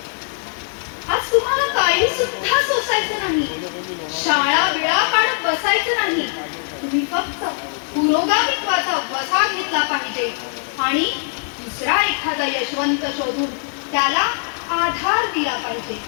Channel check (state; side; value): silent; right; 57 dB below the other